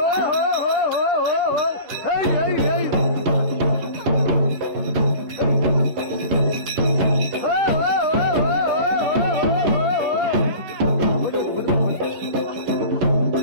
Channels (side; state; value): left; late; 11 ms